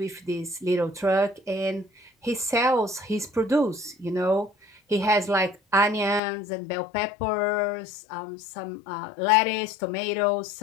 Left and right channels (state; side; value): drops out; right; at 6.2 s